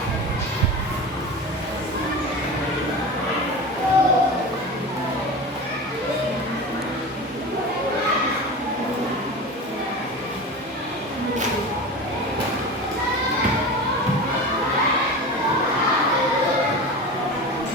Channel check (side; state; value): both; normal; correlation 0.30